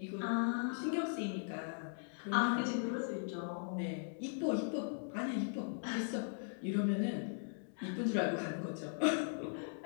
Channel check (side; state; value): right; silent; digital silence